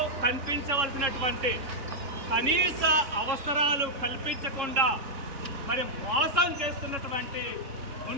కనిపించవలసినటువంటి కనీస అవసరాలు కల్పించకుండా మరి మోసం చేస్తున్నటువంటి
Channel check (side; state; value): left; late; 3.6 ms